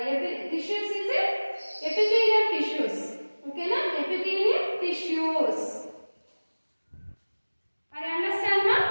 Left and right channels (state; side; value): inverted; both; correlation -1.00